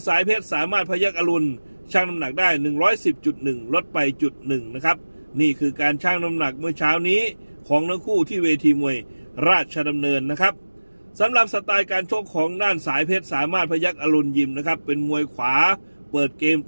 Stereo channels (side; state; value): both; inverted; correlation -1.00